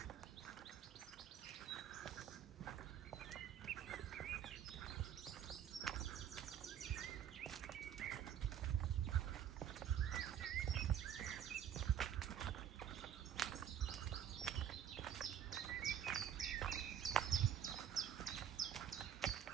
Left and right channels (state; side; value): quieter; left; 9.5 dB